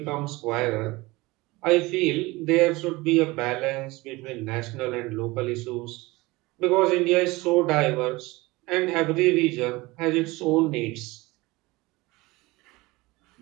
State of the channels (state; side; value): quieter; left; 21.8 dB